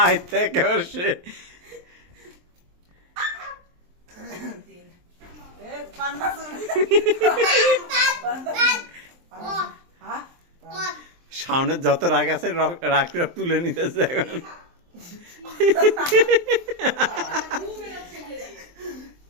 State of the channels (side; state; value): left; late; 23 ms